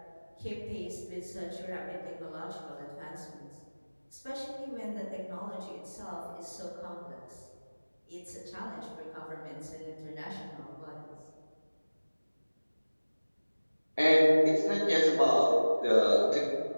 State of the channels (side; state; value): both; inverted; correlation -1.00